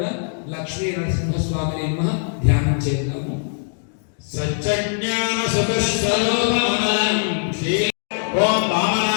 లక్ష్మీ నరసింహస్వామి నమః ధ్యానం చేద్దాము సత్యజ్ఞాన సతస్వరూపమం శ్రీ ఓం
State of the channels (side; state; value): right; silent; digital silence